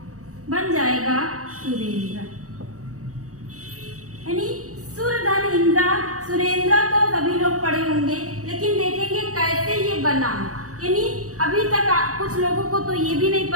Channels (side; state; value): left; late; 0.65 ms